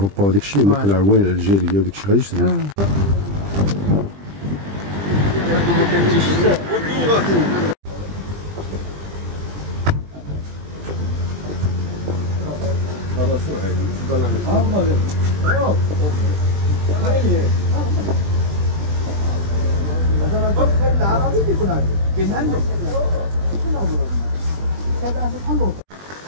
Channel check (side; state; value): left; late; 20 ms